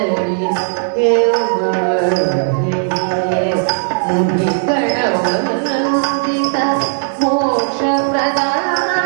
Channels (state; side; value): silent; left; digital silence